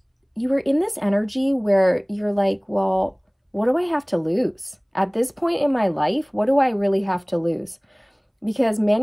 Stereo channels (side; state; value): both; identical; correlation 1.00